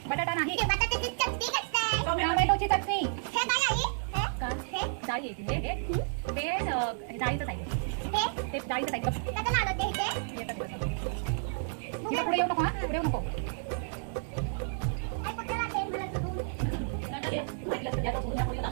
बटाटा नाही. बटाट्याची चटणी करतोय. टोमॅटोची चटणी. हे काय आहे? का? हे डाळी आहे. ते डाळीचं साईड. ते डाळीचं साईड. त्याचं नाव होते हे. पुढे येऊ नको. पुढे येऊ नको.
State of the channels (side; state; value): left; silent; digital silence